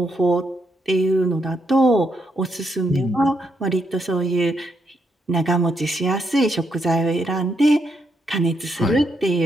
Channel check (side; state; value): both; normal; correlation 0.78